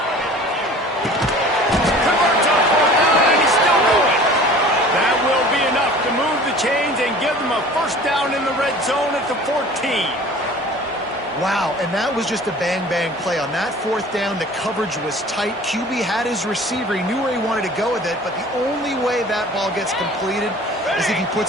Converts on 4th down, and he's still going. That will be enough to move the chains and give them a 1st down in the red zone at the 14. Wow, and that was just a bang-bang play. On that 4th down, the coverage was tight. QB had his receiver. He knew where he wanted to go with it, but the only way that ball gets completed is if he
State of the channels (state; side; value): normal; both; correlation 0.45